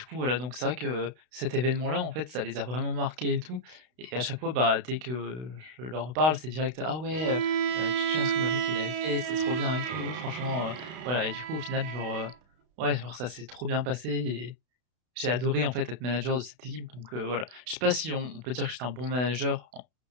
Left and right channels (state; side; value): late; left; 32 ms